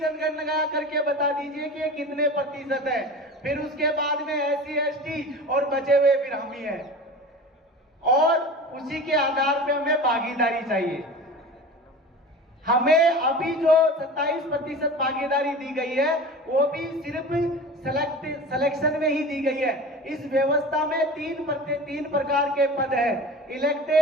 करके बता दीजिए कि ये कितने प्रतिशत है। फिर उसके बाद में एससी एसटी और बचे हुए फिर हम ही हैं और उसी के आधार पे हमें भागीदारी चाहिए। हमें अभी जो 27% भागीदारी दी गई है वो भी सिर्फ सिलेक्शन में ही दी गई है। इस व्यवस्था में तीन प्रकार के पद है,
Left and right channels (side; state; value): both; normal; correlation 0.34